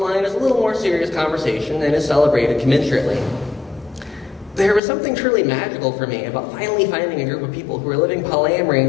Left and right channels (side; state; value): right; drops out; at 4.8 s